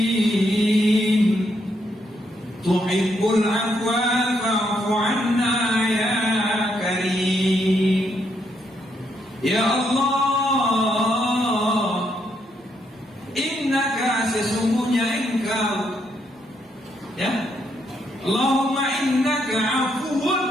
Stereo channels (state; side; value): normal; both; correlation 0.76